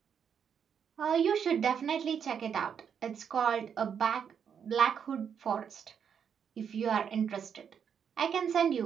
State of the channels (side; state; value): left; quieter; 7.5 dB